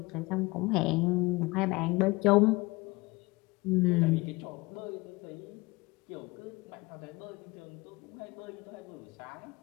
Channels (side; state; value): right; quieter; 23.5 dB